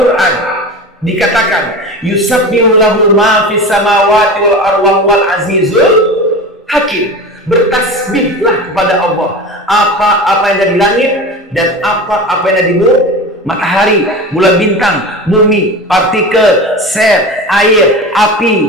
dikatakan, yusabbihu lahu ma fis samawati wal arwah wal azizul hakim. Bertasbihlah kepada Allah apa yang ada di langit dan apa yang ada di bumi. Matahari, bulan bintang, bumi, partikel, sel, air,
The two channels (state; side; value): normal; both; correlation 0.30